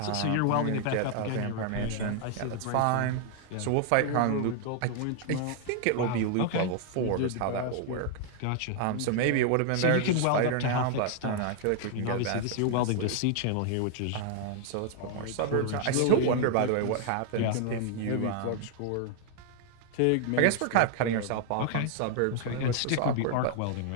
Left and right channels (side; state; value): both; different; correlation 0.00